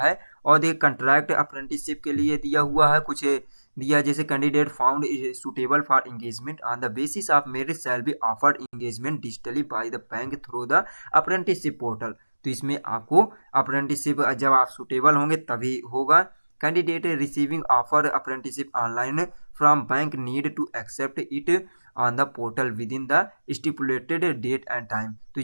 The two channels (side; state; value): both; inverted; correlation -1.00